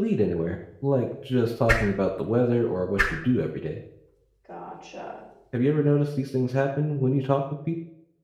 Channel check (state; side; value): identical; both; correlation 1.00